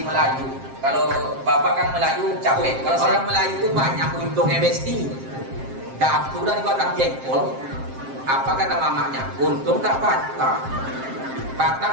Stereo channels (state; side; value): late; left; 7.6 ms